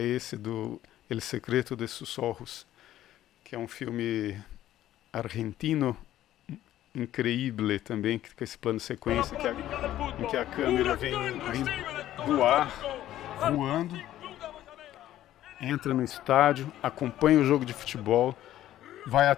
do El Secreto de sus Ojos, que é um filme argentino increíble também, com esse plano de sequência em que a câmera vem do ar, voando, entra no estádio, acompanha o jogo de futebol, vai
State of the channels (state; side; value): quieter; right; 13.2 dB